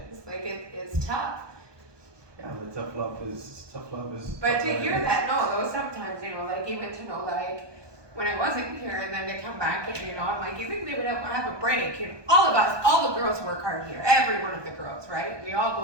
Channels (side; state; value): left; late; 1.2 ms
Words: Like, it's tough. Yeah, but tough love is. But to hear that, no, though, sometimes, you know, like, even to know, like, when I wasn't here, and then to come back, and, you know, I'm like, you think they would have a break? You know, all of us, all the girls work hard here. Every one of the girls, right? We all